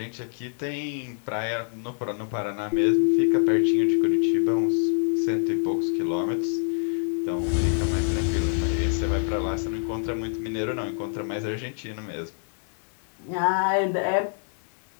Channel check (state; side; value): silent; right; 61 dB below the other